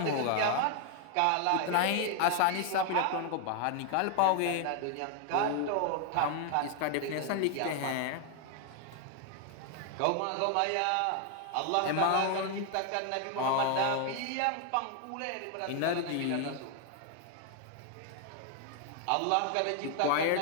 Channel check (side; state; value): both; different; correlation 0.00